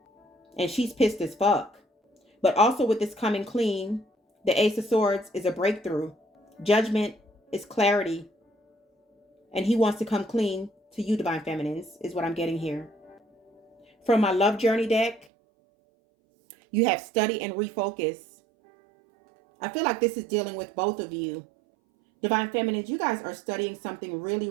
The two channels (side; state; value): left; drops out; at 15.2 s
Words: And she's pissed as fuck. But also with this coming clean, the Ace of Swords is a breakthrough. Judgment is clarity. And he wants to come clean to you, divine feminines, is what I'm getting here. From my love journey deck, you have study and refocus. I feel like this is dealing with both of you. Divine feminines, you guys are studying something really,